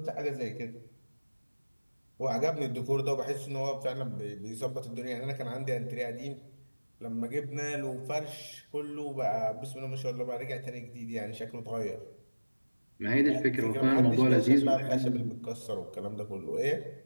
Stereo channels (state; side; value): inverted; both; correlation -1.00